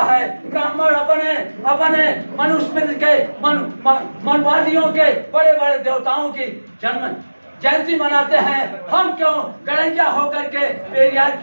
है, ब्राह्मण अपने मनुस्मृति के मनवादियों के बड़े बड़े देवताओं की जयंती मनाते हैं। हम क्यों गडरिया होकर के पेरियार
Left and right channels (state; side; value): inverted; both; correlation -1.00